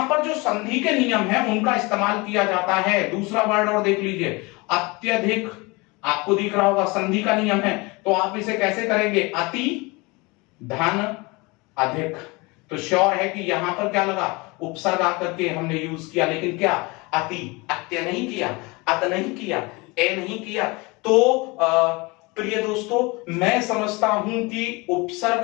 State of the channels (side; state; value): right; quieter; 25.7 dB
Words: पर जो संधि के नियम है उनका इस्तेमाल किया जाता है। दूसरा वर्ड और देख लीजिए, अत्यधिक। आपको दिख रहा होगा संधि का नियम है, तो आप इसे कैसे करेंगे? अति धन अधिक। तो श्योर है कि यहां पर क्या लगा? उपसर्ग आकर के हमने यूज किया, लेकिन क्या? अति। अत्य नहीं किया, अत नहीं किया, ए नहीं किया। तो प्रिय दोस्तों, मैं समझता हूं कि